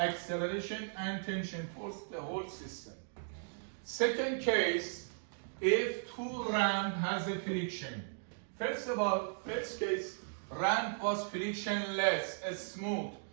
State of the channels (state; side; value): silent; left; digital silence